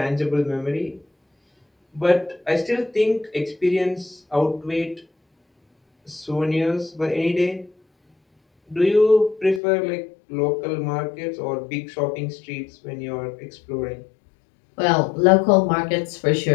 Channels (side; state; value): right; drops out; at 9.6 s